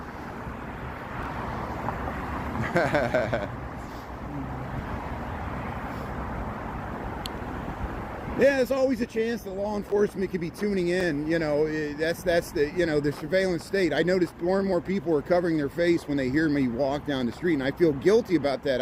Yeah, there's always a chance that law enforcement could be tuning in. You know, that's the, you know, the surveillance state. I noticed more and more people are covering their face when they hear me walk down the street, and I feel guilty about that.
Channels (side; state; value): both; identical; correlation 1.00